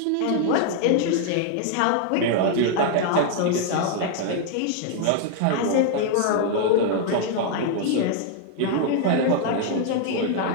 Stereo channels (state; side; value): different; both; correlation 0.00